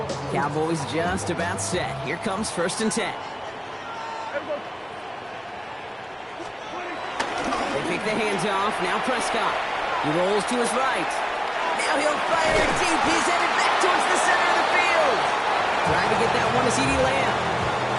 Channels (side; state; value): both; identical; correlation 1.00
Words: Cowboys just about set. Here comes 1st and 10. They pick the hands off. Now Prescott. He rolls to his right. Now he'll fire deep. He's headed back towards the center of the field. Trying to get that one to CeeDee Lamb.